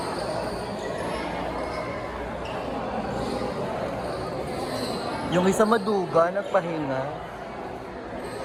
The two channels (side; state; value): both; identical; correlation 1.00